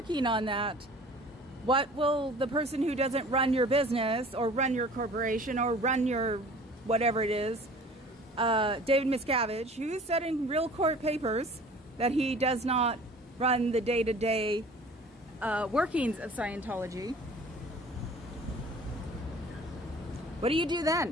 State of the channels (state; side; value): normal; both; correlation 0.47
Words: on that, what will the person who doesn't run your business or run your corporation or run your whatever it is, David Miscavige, who said in real court papers that he does not run the day-to-day workings of Scientology, what do you do